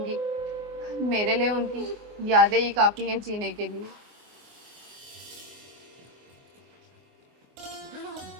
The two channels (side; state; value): left; late; 24 ms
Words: मेरे लिए उनकी यादें ही काफ़ी हैं जीने के लिए।